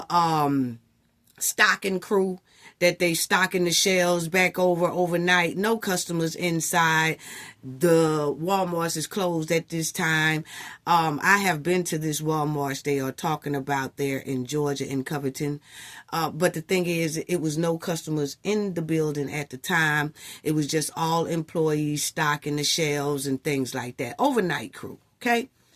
stocking crew that they stocking the shelves back overnight. No customers inside. The Walmarts is closed at this time. I have been to this Walmart they are talking about there in Georgia, in Covington. But the thing is, it was no customers in the building at the time. It was just all employees stocking the shelves and things like that. Overnight crew, okay?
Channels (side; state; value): both; identical; correlation 1.00